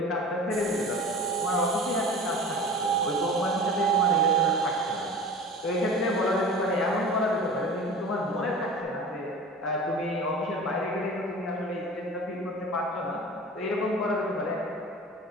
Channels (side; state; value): both; normal; correlation 0.37